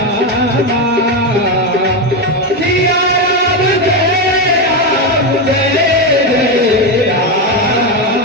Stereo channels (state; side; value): normal; both; correlation 0.10